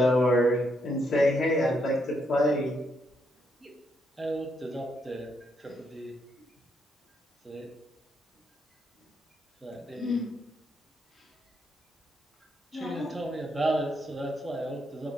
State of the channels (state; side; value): normal; both; correlation 0.77